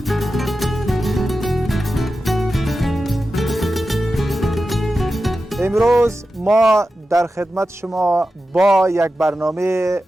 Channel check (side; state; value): both; normal; correlation 0.92